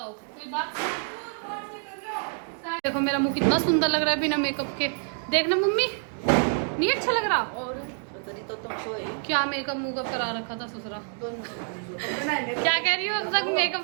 कोई बात। देखो मेरा मुंह कितना सुंदर लग रहा है बिना मेकअप के। देखना मम्मी नहीं अच्छा लग रहा। और तो तुम सोए क्या मेकअप मुकअप करा रखा था ससुरा। क्या कह रही हो अब तक मेकअप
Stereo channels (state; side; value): silent; left; 57 dB below the other